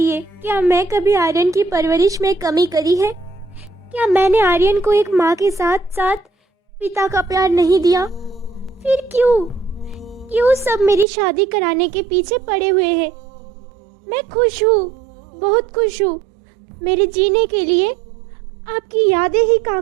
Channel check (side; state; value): left; drops out; at 11.1 s